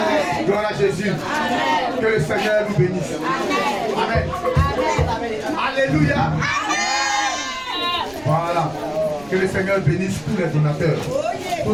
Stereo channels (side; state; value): right; noise; rumble, 22 dB below the sound